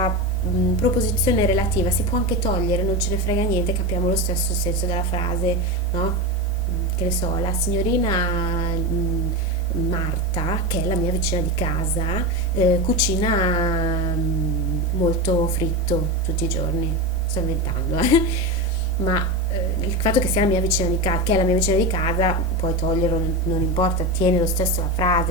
proposizione relativa si può anche togliere, non ce ne frega niente, capiamo lo stesso senso della frase, no? Che ne so, la signorina Marta, che è la mia vicina di casa, cucina molto fritto tutti i giorni. Sto inventando, ma il fatto che sia la mia vicina di casa, che è la mia vicina di casa, puoi toglierlo, non importa, tiene lo stesso la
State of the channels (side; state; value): both; normal; correlation 0.19